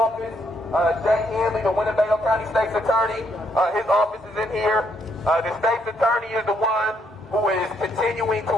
Jay Henley, the Winnebago County State's attorney, his office is in here. The state's attorney is the one who is continuing to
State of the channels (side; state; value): both; normal; correlation 0.73